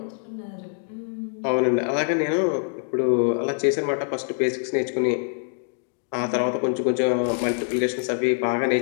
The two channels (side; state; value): right; silent; digital silence